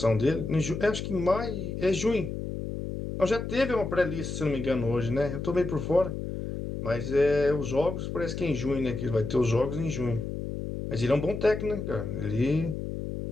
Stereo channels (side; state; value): left; noise; hum, 5 dB below the sound